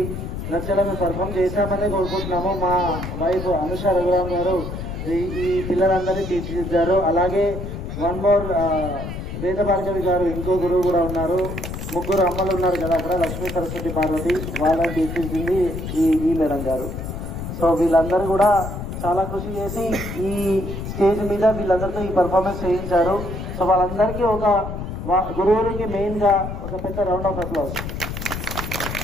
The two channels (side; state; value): left; noise; rumble, 6 dB below the sound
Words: నచ్చడం పర్ఫామ్ చేశామని కోరుకుంటున్నాము. మా వైఫ్ అనుష రఘురామ్ గారు ఈ పిల్లలందరినీ తీర్చిదిద్దారు. అలాగే వన్ మోర్ వేద భార్గవి గారు ఇంకో గురువు కూడా ఉన్నారు. ముగ్గురు అమ్మలు ఉన్నారు కదా అక్కడ, లక్ష్మీ సరస్వతి పార్వతి, వాళ్ళని తీర్చిదిద్దింది ఈ మేడం గారు. సో వీళ్ళందరూ కూడా చాలా కృషి చేసి ఈ స్టేజ్ మీద వీళ్ళందరితో ఈ పర్ఫార్మెన్స్ చేయించారు. సో వాళ్ళందరికీ ఒక గురువునికి మెయిన్గా ఒక పెద్ద రౌండ్ ఆఫ్ అప్లాస్.